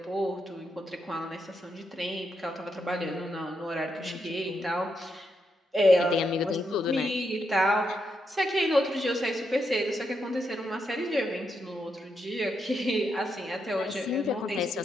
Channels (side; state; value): both; normal; correlation 0.82